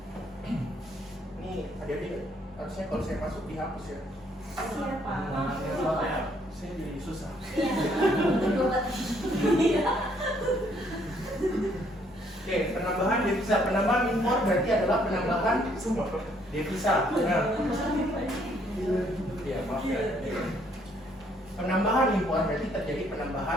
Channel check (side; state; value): both; normal; correlation 0.67